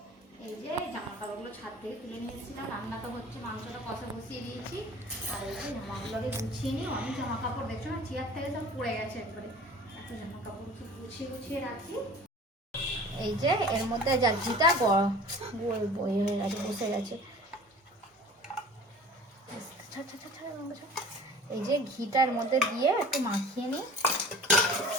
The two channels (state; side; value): normal; both; correlation 0.44